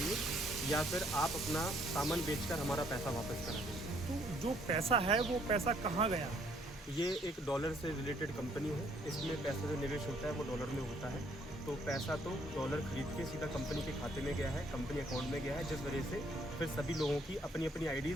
या फिर आप अपना सामान बेचकर हमारा पैसा वापस करा देंगे। तो जो पैसा है वो पैसा कहाँ गया? ये एक डॉलर से रिलेटेड कंपनी है, इसमें पैसा जो निवेश होता है वो डॉलर में होता है। तो पैसा तो डॉलर खरीद के सीधा कंपनी के खाते में गया है, कंपनी अकाउंट में गया है, जिस वजह से फिर सभी लोगों की अपनी अपनी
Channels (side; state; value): both; normal; correlation 0.66